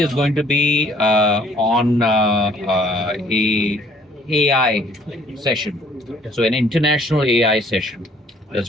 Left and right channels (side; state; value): both; normal; correlation 0.59